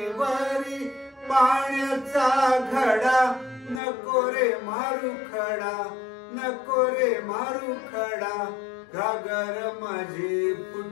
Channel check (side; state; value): right; drops out; at 3.8 s